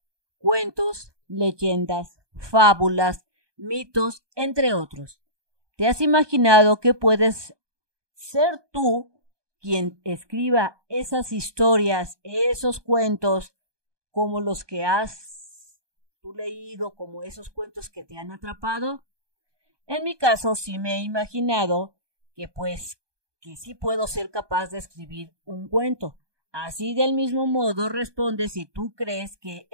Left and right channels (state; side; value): late; left; 1.2 ms